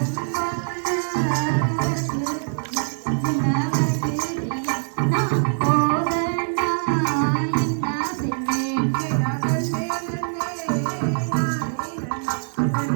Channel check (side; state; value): left; silent; 63 dB below the other